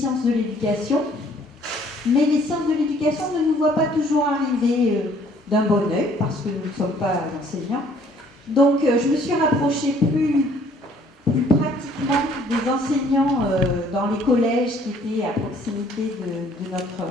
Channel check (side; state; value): both; normal; correlation 0.60